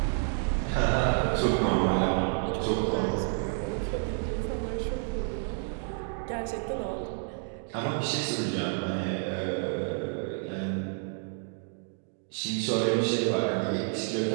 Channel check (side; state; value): left; silent; 58 dB below the other